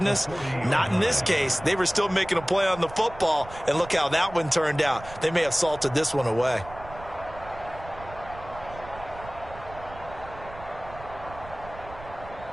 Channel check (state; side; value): noise; right; rumble, 16 dB below the sound